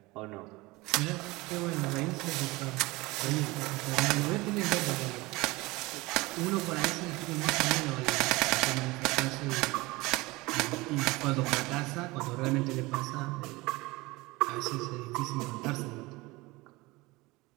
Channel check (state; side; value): quieter; left; 22.1 dB